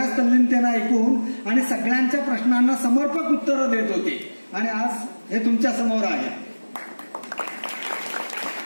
तल्लीनतेनं ऐकून आणि सगळ्यांच्या प्रश्नांना समर्पक उत्तरं देत होते आणि आज हे तुमच्या समोर आहे.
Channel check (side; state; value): both; inverted; correlation -1.00